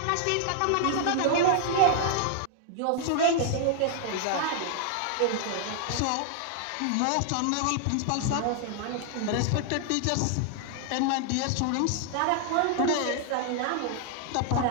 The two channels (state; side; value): different; both; correlation 0.00